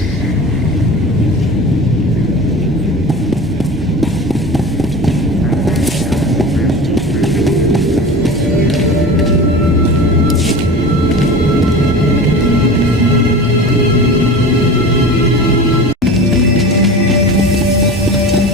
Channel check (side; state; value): both; normal; correlation 0.34